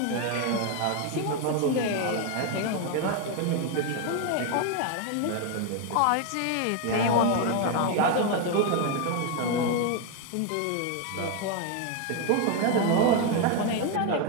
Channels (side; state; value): both; different; correlation 0.01